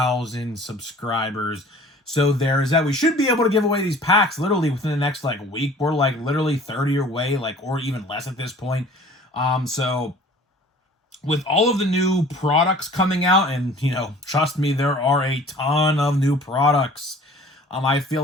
subscribers. So there's that. We should be able to give away these packs literally within the next week. We're literally 30 away, or even less at this point. So with all of the new products coming out, and trust me, there are a ton of new products. I feel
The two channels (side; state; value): both; normal; correlation 0.48